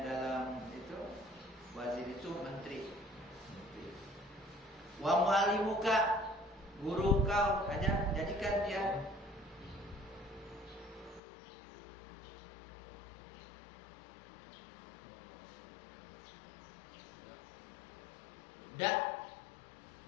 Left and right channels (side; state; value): right; drops out; at 11.2 s